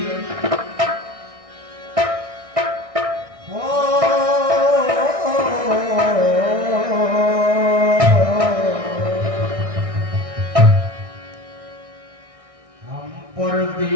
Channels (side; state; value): left; late; 1.6 ms